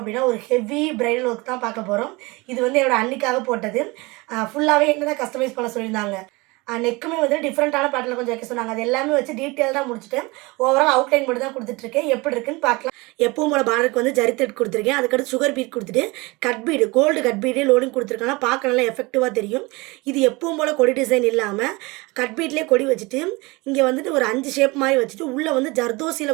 ஒரு ஹெவி பிரைடல் ஒர்க் தான் பார்க்க போகிறோம். இது வந்து என்னோட அன்னிக்காக போட்டது. ஃபுல்லாகவே என்ன தான் கஸ்டமைஸ் பண்ண சொல்லியிருந்தாங்க. நெக்குமே வந்து டிஃப்ரெண்ட்டான பேட்டர்னில் கொஞ்சம் வைக்க சொன்னாங்க. அது எல்லாமே வச்சு டீட்டெயில்டாக முடிச்சுட்டு ஓவரால் அவுட்லைன் மட்டும் தான் கொடுத்துட்ருக்கேன். எப்படி இருக்குன்னு பார்க்கலாம். எப்பவும் போல பார்டருக்கு வந்து ஜரி த்ரெட் கொடுத்துருக்கேன். அதுக்கடுத்து சுகர் பீட் கொடுத்துட்டு கட் பீடு, கோல்டு கட் பீடே லோடிங் கொடுத்துருக்காங்க. பார்க்க நல்லா எஃபெக்டிவாக தெரியும். இது எப்பவும் போல் கொடி டிசைன் இல்லாமல் கட் பீட்லேயே கொடி வச்சுட்டு இங்கே வந்துட்டு ஒரு 5 ஷேப் மாதிரி வச்சுட்டு உள்ளே வந்து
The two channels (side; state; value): left; quieter; 24.3 dB